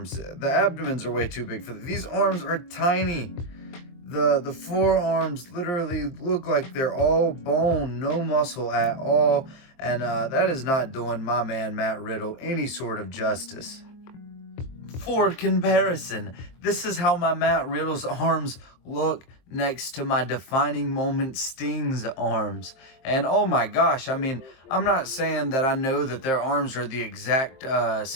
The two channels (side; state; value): right; late; 23 ms